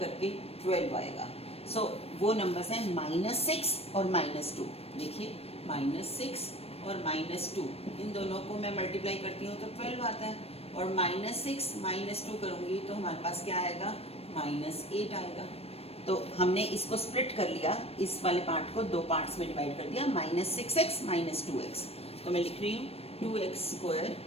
करके 12 आएगा? सो वो नंबर्स हैं -6 और -2। देखिए -6 और -2, इन दोनों को मैं मल्टीप्लाई करती हूँ तो 12 आता है, और -6 -2 करूँगी तो हमारे पास क्या आएगा? -8 आएगा। तो हमने इसको स्प्लिट कर लिया, इस वाले पार्ट को दो पार्ट्स में डिवाइड कर दिया, -6x -2x। तो मैं लिख रही हूँ 2x²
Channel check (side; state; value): right; late; 0.29 ms